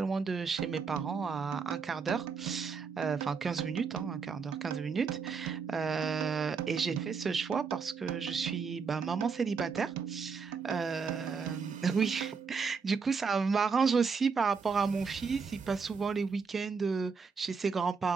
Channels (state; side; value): quieter; left; 5.4 dB